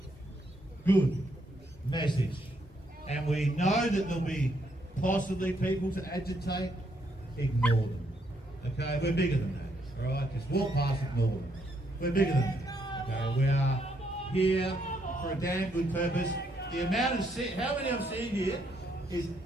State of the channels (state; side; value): normal; both; correlation 0.74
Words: good message. And we know that there'll be possibly people to agitate. Ignore them. Okay, we're bigger than that. All right, just walk past, ignore them. We're bigger than that. Okay, we are here for a damn good purpose. The amount of how many I've seen here is